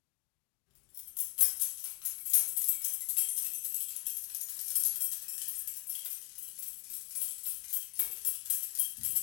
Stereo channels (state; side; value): quieter; right; 29.4 dB